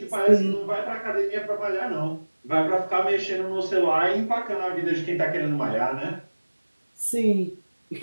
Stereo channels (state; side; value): inverted; both; correlation -1.00